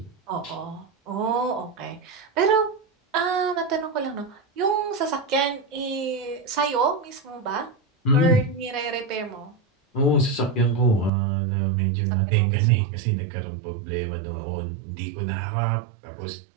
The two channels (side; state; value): left; drops out; at 11.1 s